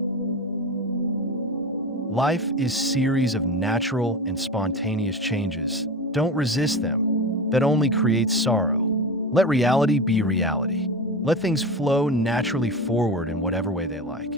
Life is a series of natural and spontaneous changes. Don't resist them. That only creates sorrow. Let reality be reality. Let things flow naturally forward in whatever way they like.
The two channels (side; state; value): both; normal; correlation 0.27